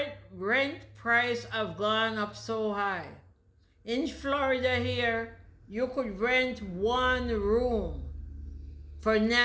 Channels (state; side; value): identical; both; correlation 1.00